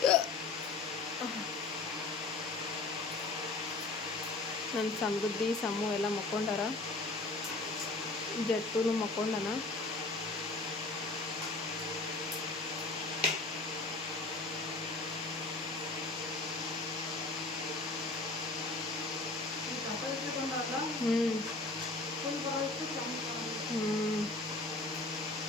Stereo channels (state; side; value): quieter; right; 3.4 dB